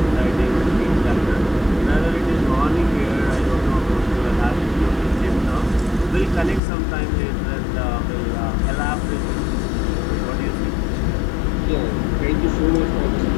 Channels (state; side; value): drops out; right; at 6.6 s